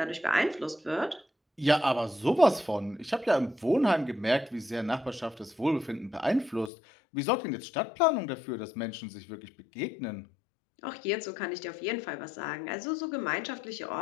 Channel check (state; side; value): drops out; right; at 6.7 s